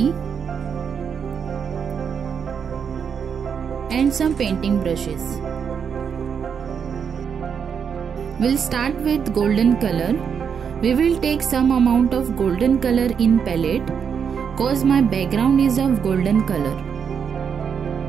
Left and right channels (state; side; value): quieter; left; 7.0 dB